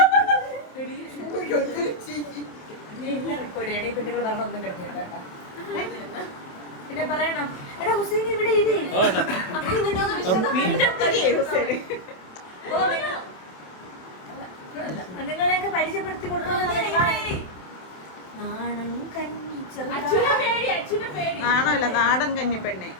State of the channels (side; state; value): right; late; 27 ms